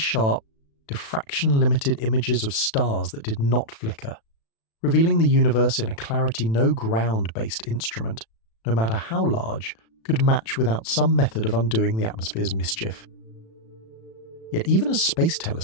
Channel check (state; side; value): late; right; 36 ms